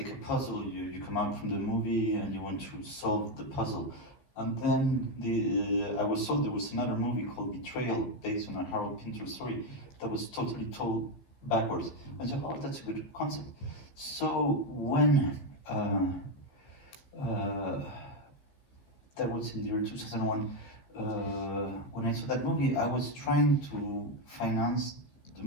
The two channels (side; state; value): right; late; 14 ms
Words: a puzzle. You come out from the movie and you want to solve the puzzle." And then I was told there was another movie called Betrayal, based on a Harold Pinter story, that was totally told backwards. I said, "Oh, that's a good concept." So when that was in the year 2001. When I saw that movie, I was trying to finance the